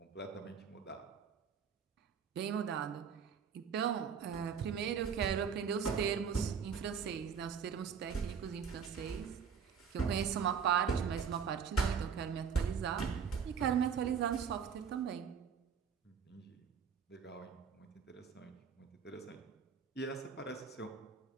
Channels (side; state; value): left; quieter; 6.8 dB